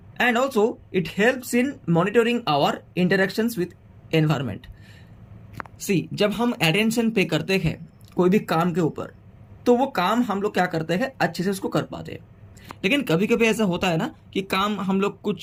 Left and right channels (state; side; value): identical; both; correlation 1.00